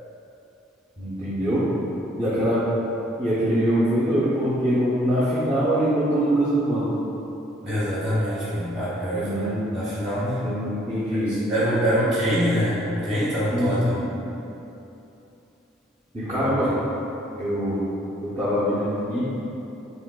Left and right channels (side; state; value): both; normal; correlation 0.63